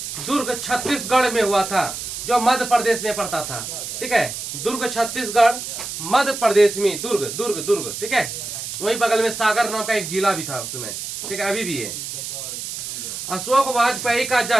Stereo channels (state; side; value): noise; right; hiss, 7 dB below the sound